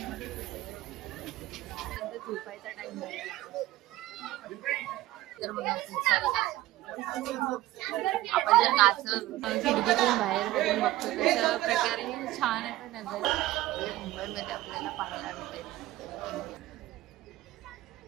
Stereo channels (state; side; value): quieter; left; 16.3 dB